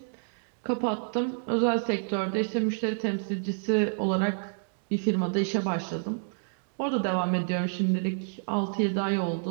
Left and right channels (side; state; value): left; silent; digital silence